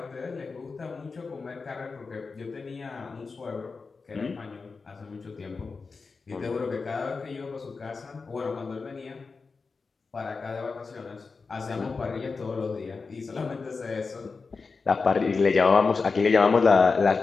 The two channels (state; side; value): quieter; right; 4.5 dB